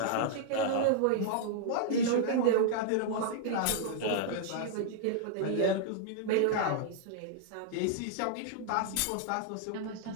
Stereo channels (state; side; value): different; both; correlation -0.01